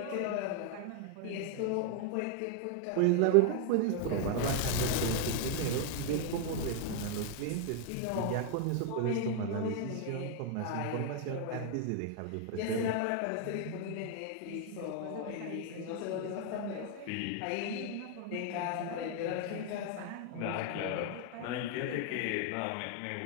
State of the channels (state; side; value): different; both; correlation 0.01